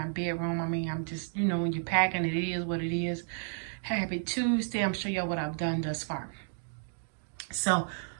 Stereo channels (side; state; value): left; silent; digital silence